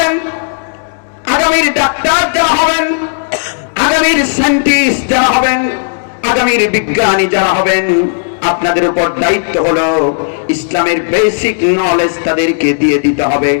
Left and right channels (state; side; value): silent; right; digital silence